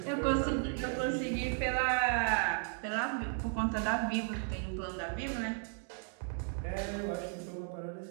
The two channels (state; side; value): silent; left; 54 dB below the other